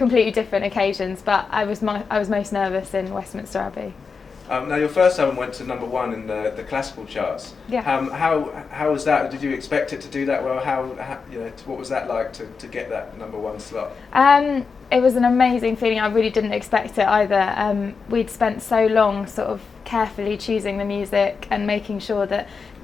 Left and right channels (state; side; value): quieter; right; 5.2 dB